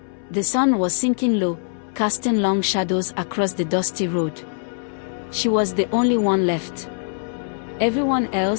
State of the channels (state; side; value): silent; right; 64 dB below the other